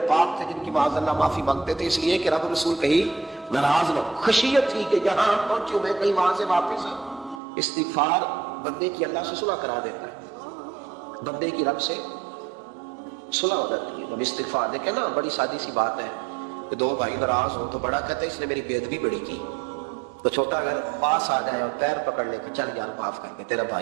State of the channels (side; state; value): left; drops out; at 7.4 s